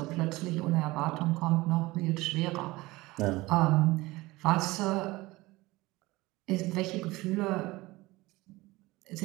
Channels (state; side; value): quieter; left; 20.4 dB